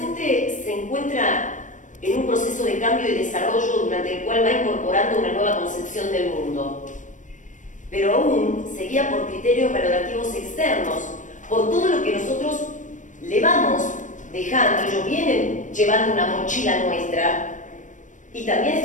se encuentra en un proceso de cambio y desarrollo durante el cual va incorporando una nueva concepción del mundo, pero aún se guía por criterios valorativos externos, por todo lo que nosotros le vamos dejando. Ellos vienen llevando una mochila nuestra y también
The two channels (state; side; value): late; right; 0.37 ms